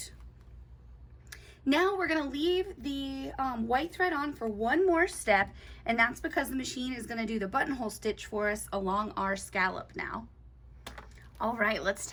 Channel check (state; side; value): identical; both; correlation 1.00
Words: Now we're going to leave the white thread on for one more step, and that's because the machine is going to do the buttonhole stitch for us along our scallop now. All right, let's